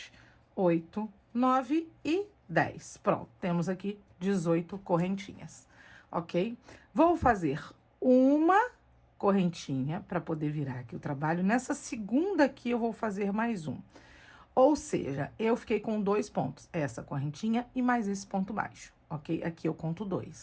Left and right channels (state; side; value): identical; both; correlation 1.00